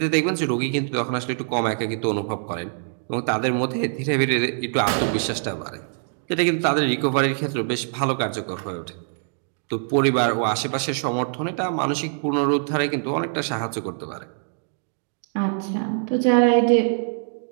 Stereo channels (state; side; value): silent; left; digital silence